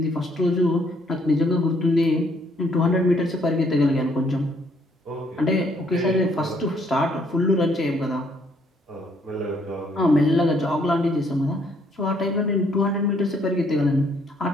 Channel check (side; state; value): both; normal; correlation 0.67